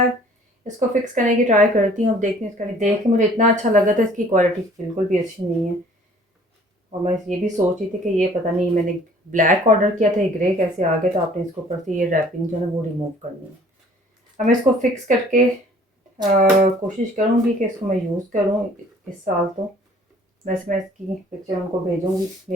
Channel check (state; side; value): normal; both; correlation 0.54